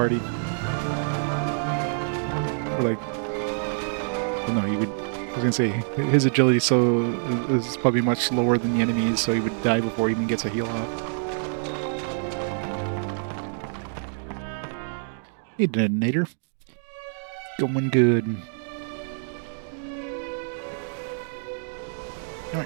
Or like, well, no, he would. I was gonna say his agility is probably much lower than the enemies, so he would die before he even gets a heal off. Hey, detonator. Going good.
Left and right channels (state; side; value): silent; left; digital silence